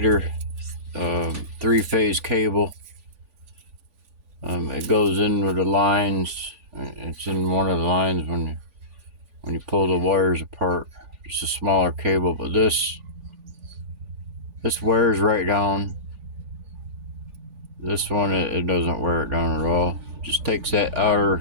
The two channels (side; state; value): left; late; 3.4 ms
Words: 3-phase cable. It goes in with the lines. It's in one of the lines when you pull the wires apart. It's a smaller cable, but this wears right down. This one, it doesn't wear it down at all. It just takes that